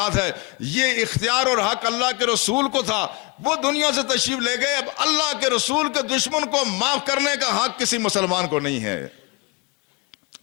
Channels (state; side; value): quieter; right; 27.1 dB